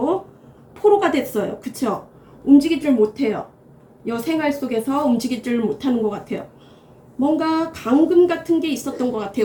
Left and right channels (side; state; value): both; identical; correlation 1.00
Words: 포로가 됐어요. 그쵸? 움직이질 못해요. 생활 속에서 움직이질 못하는 것 같아요. 뭔가 감금 같은 게 있었던 것